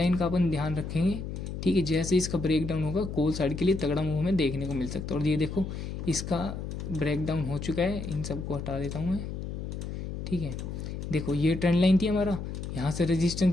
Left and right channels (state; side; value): noise; left; hum, 6 dB below the sound